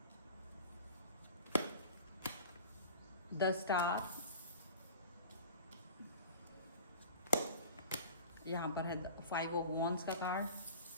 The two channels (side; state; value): both; inverted; correlation -0.39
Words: द स्टार, यहाँ पर है 5 ऑफ वॉन्ड्स का कार्ड।